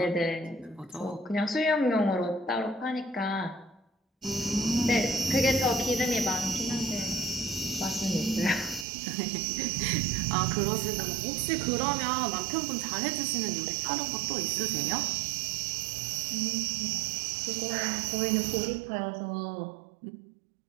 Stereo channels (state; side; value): drops out; left; at 8.8 s